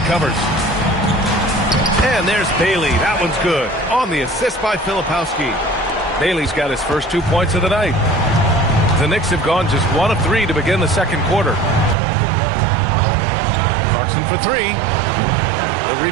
covers. And there's Bailey. That one's good. On the assist by Filipowski. Bailey's got his first 2 points of the night. The Knicks have gone just 1 of 3 to begin the second quarter. Clarkson for 3. The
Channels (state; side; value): drops out; left; at 12.0 s